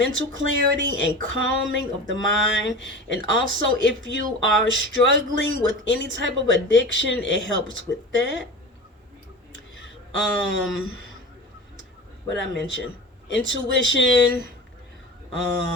clarity and calming of the mind. And also, if you are struggling with any type of addiction, it helps with that. What I mentioned, intuition.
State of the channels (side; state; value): both; normal; correlation 0.32